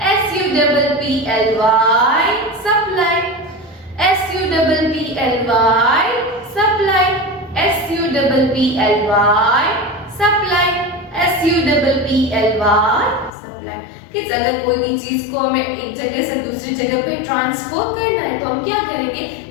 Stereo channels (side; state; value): right; drops out; at 13.3 s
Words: supply. SUPPLY, supply. SUPPLY, supply. SUPPLY, supply. Kids, अगर कोई भी चीज को हमें एक जगह से दूसरी जगह पे ट्रांसफर करना है तो हम क्या करेंगे?